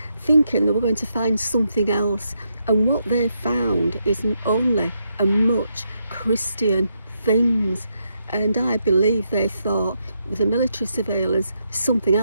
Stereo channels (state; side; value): inverted; both; correlation -0.80